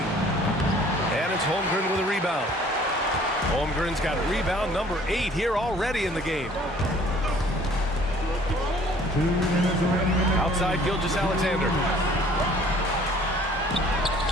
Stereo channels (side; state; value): both; normal; correlation 0.54